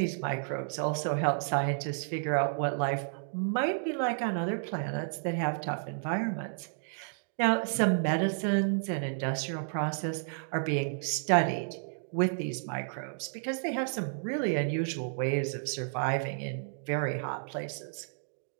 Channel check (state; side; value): silent; left; digital silence